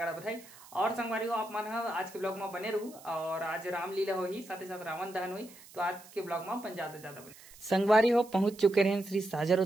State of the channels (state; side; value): noise; right; hiss, 21 dB below the sound